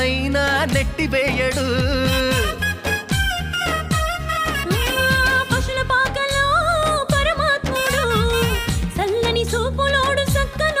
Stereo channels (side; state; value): both; identical; correlation 1.00